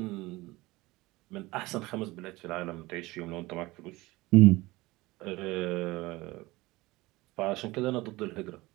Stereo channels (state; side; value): quieter; left; 20.5 dB